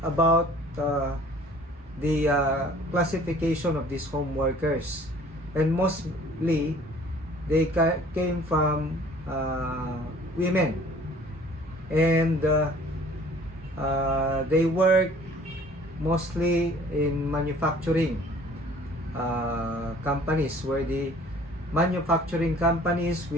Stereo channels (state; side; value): normal; both; correlation 0.52